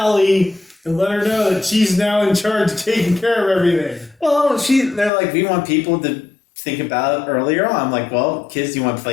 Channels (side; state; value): right; drops out; at 5.1 s